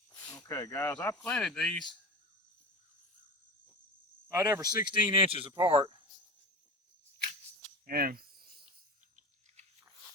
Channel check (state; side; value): normal; both; correlation 0.30